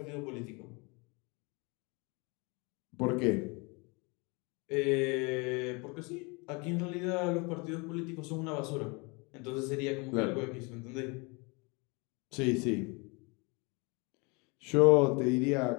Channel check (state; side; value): quieter; right; 29.6 dB